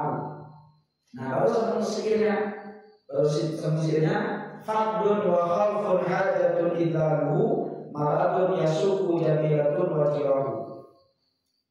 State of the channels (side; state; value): both; identical; correlation 1.00